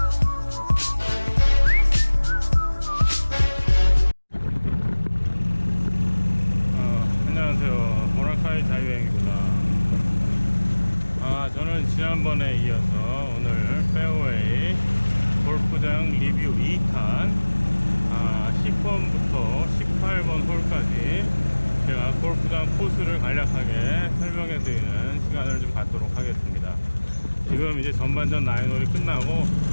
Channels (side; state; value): both; inverted; correlation -1.00